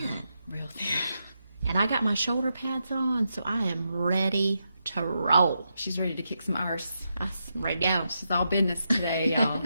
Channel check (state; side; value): inverted; both; correlation -0.85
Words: Real thin. And I got my shoulder pads on, so I am ready to roll. She's ready to kick some arse. I'm ready to go. She's all business today, y'all.